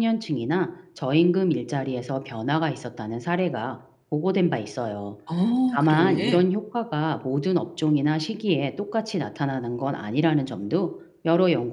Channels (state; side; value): identical; both; correlation 1.00